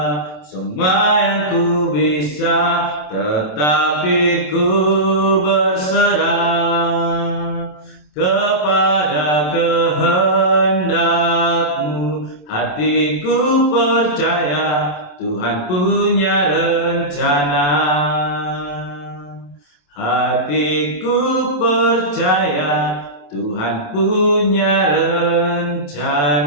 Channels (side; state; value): right; late; 27 ms